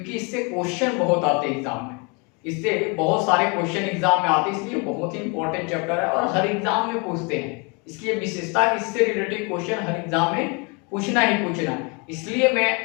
इससे क्वेश्चन बहुत आते हैं एग्जाम में। इससे बहुत सारे क्वेश्चन एग्जाम में आते हैं, इसलिए बहुत ही इंपॉर्टेंट चैप्टर है और हर एग्जाम में पूछते हैं। इसलिए विशेषता इससे रिलेटेड क्वेश्चन हर एग्जाम में पूछना ही पूछना है। इसलिए मैं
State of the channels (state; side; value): quieter; right; 31.6 dB